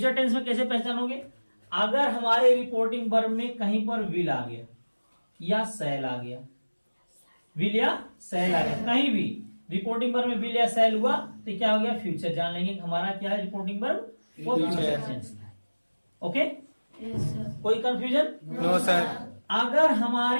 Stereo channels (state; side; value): inverted; both; correlation -1.00